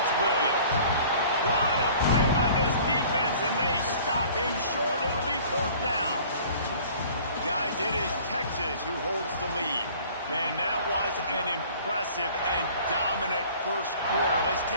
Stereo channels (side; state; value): both; inverted; correlation -0.49